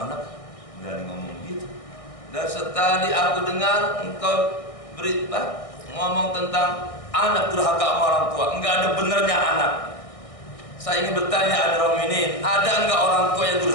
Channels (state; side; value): late; right; 1.6 ms